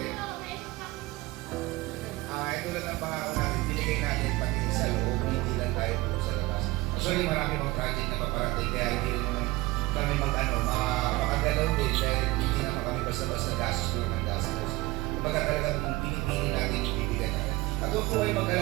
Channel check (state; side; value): quieter; left; 20.2 dB